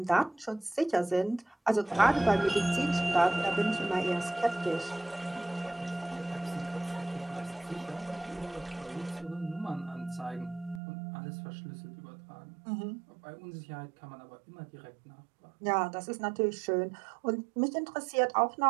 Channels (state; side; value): drops out; left; at 10.8 s